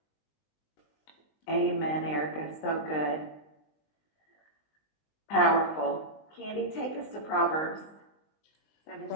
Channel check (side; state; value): right; late; 19 ms